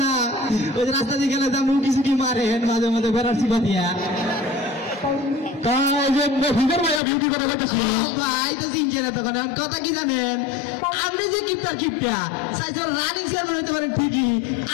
না, ওই যে রাস্তা দিয়ে গেলে যেমন কিছু কি মারেন মাঝে মাঝে বেড়ার চিপা দিয়া। কথা কি জানেন? আপনি যে কিপটার কিপটা রানিং চেয়ারম্যান হতে পারেন ঠিকই,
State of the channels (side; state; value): right; drops out; at 7.0 s